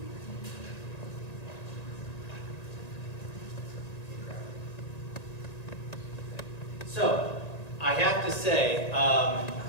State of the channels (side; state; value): right; late; 1.9 ms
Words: So, I have to say,